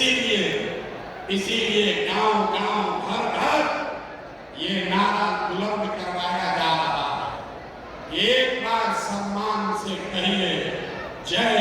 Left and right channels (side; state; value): both; identical; correlation 1.00